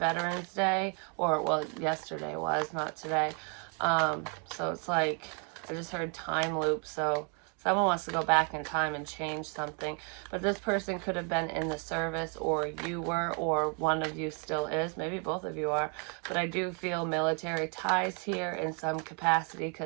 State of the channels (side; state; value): left; quieter; 37.5 dB